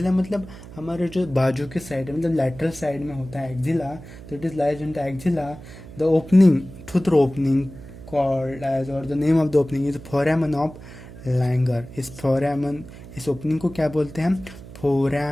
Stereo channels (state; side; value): noise; right; hum, 16 dB below the sound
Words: मतलब हमारे जो बाजू के साइड है, मतलब लैटरल साइड में होता है एक्जिला। तो it is lies in the axilla. The opening, through opening called edge, और the name of the opening is foramen of Langer. इस फोरामन, इस ओपनिंग को क्या बोलते हैं हम?